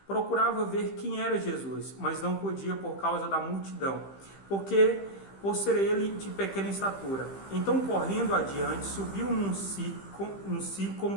procurava ver quem era Jesus, mas não podia por causa da multidão, por ser ele de pequena estatura. Então, correndo adiante, subiu num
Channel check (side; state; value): right; late; 15 ms